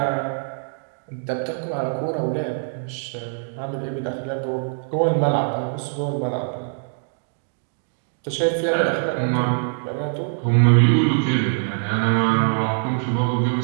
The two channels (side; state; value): left; silent; digital silence